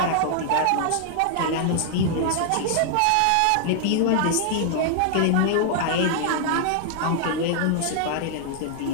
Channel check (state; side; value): different; both; correlation 0.00